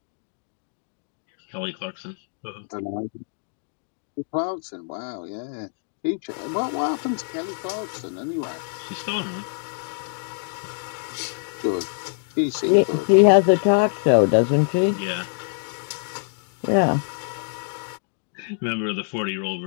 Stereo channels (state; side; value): silent; right; digital silence